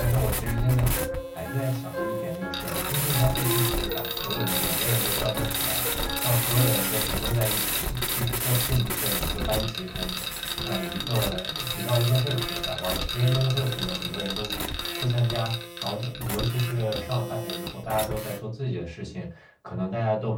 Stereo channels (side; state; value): both; identical; correlation 1.00